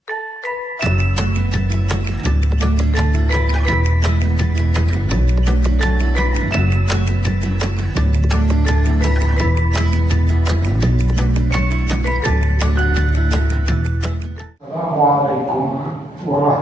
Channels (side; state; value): both; normal; correlation 0.87